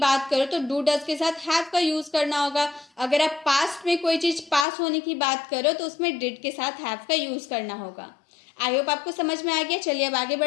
करो तो डू डज के साथ हैव का यूज करना होगा। अगर आप पास्ट में कोई चीज पास होने की बात करो तो उसमें डिड के साथ हैव का यूज करना होगा। आई होप आपको समझ में आ गया। चलिए अब आगे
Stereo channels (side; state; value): right; drops out; at 4.7 s